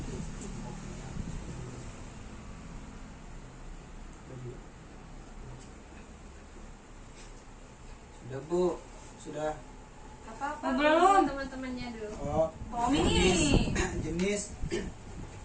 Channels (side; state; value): both; identical; correlation 1.00